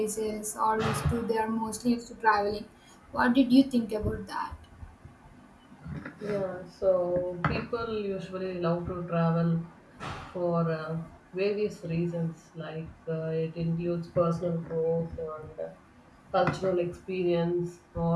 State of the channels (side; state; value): both; identical; correlation 1.00